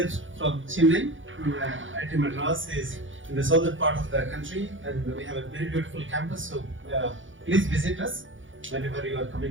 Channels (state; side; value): late; left; 0.56 ms